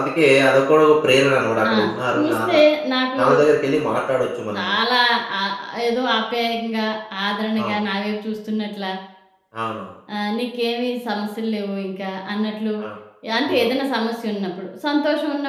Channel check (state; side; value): identical; both; correlation 1.00